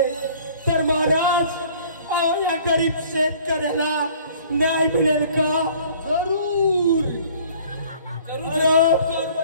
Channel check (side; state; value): both; inverted; correlation -0.53